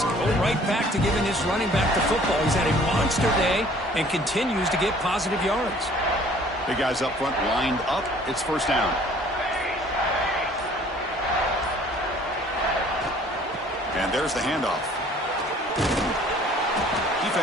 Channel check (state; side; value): normal; both; correlation 0.54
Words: Go right back to giving this running back the football. He's had a monster day and continues to get positive yards. Big guys up front lined up. It's first down. And there's the handoff.